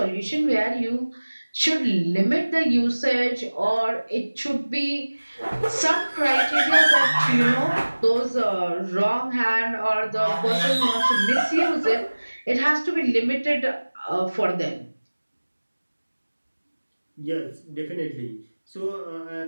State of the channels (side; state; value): both; inverted; correlation -1.00